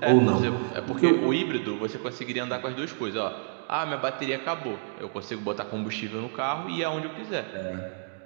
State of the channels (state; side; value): silent; left; digital silence